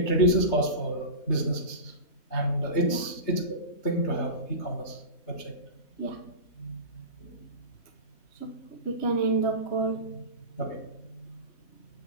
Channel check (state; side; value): late; right; 3.3 ms